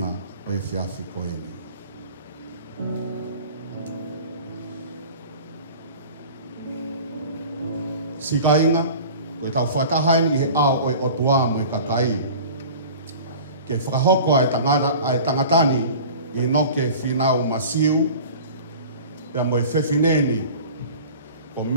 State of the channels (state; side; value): inverted; both; correlation -0.40